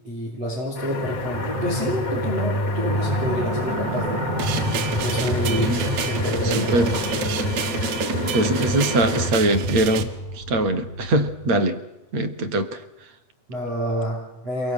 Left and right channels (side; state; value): left; late; 8.9 ms